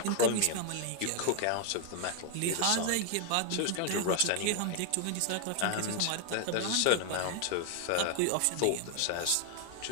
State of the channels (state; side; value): different; both; correlation 0.00